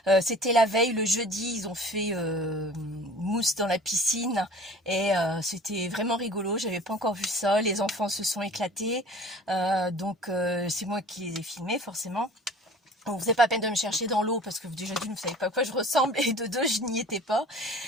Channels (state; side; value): normal; both; correlation 0.45